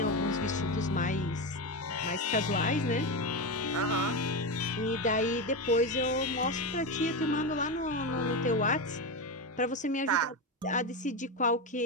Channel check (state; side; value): normal; both; correlation 0.15